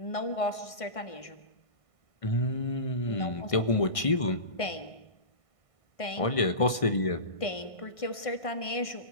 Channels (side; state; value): right; late; 1.6 ms